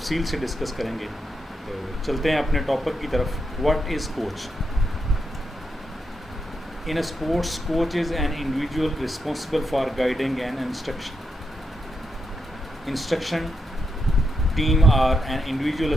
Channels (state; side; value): normal; both; correlation 0.84